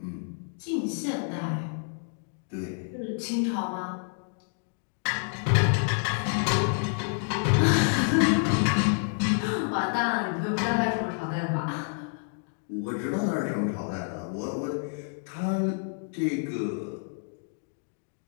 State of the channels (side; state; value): right; silent; 59 dB below the other